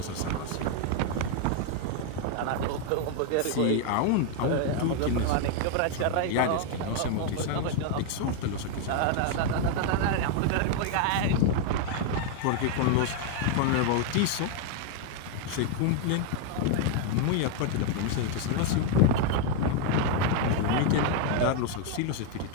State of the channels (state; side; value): different; both; correlation 0.01